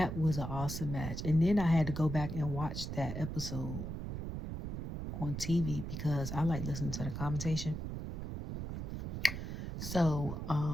was an awesome match. And then I had to go back and watch that episode on TV because I like listening to the commentation. So,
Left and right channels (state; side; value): noise; right; rumble, 5 dB below the sound